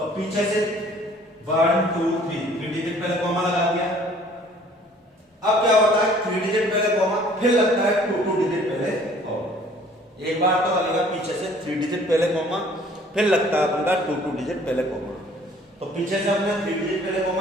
पीछे से 1 2 3 डिजिट पहले कॉमा लगा दिया। अब क्या होता है 3 डिजिट पहले कॉमा, फिर लगता है 2 डिजिट पहले कॉमा। एक बार तो लगेगा पीछे से 3 डिजिट पहले कॉमा, फिर लगता है अपन का 2 डिजिट पहले कॉमा। तो पीछे से हमने 3 डिजिट पहले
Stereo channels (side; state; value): both; normal; correlation 0.55